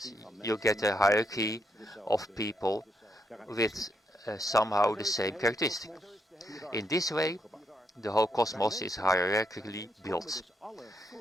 You get a hierarchy of people with somehow the same characteristic. In this way, the whole cosmos is hierarchically built.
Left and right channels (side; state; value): both; normal; correlation 0.78